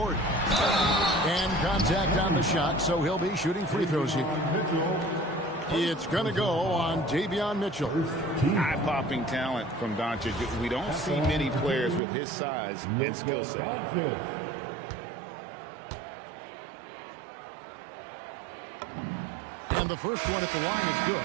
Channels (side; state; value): left; drops out; at 12.0 s